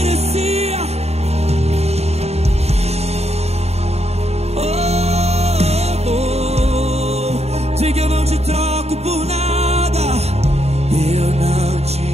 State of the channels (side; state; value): left; late; 0.31 ms